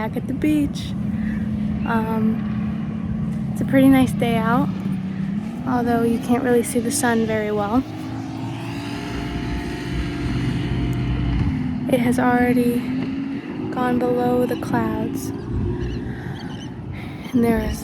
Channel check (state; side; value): identical; both; correlation 1.00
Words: at the beach. It's a pretty nice day out, although you can't really see the sun very well. It has already gone below the clouds. And there